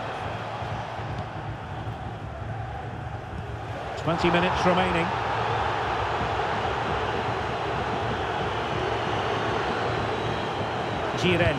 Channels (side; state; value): both; identical; correlation 1.00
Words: "20 minutes remaining.